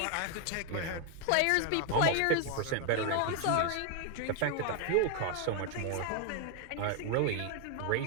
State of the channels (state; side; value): different; both; correlation 0.01